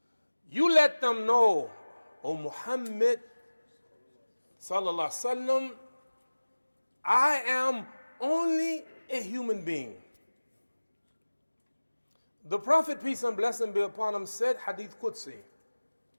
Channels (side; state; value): both; inverted; correlation -1.00